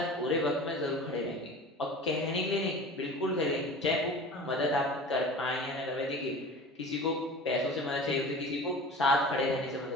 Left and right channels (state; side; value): normal; both; correlation 0.38